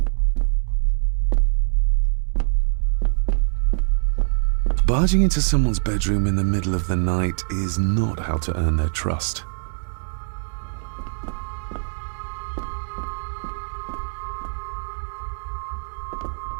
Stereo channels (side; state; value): left; silent; digital silence